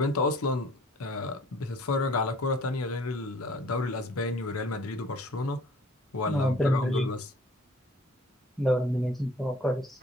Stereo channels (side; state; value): both; normal; correlation 0.52